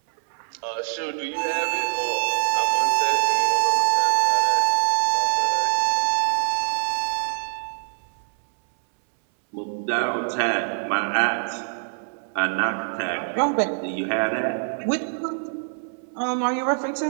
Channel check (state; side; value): silent; left; 63 dB below the other